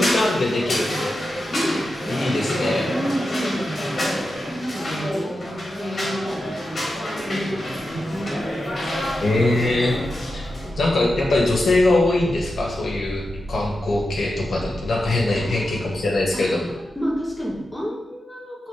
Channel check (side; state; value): both; normal; correlation 0.90